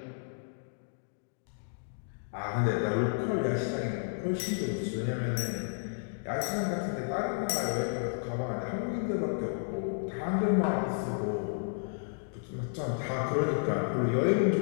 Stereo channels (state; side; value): silent; right; digital silence